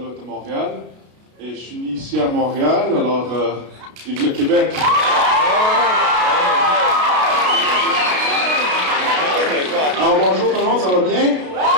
de Montréal. Et je suis né ici à Montréal, alors vive le Québec! Alors bonjour tout le monde, ça va bien?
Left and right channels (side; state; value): left; late; 33 ms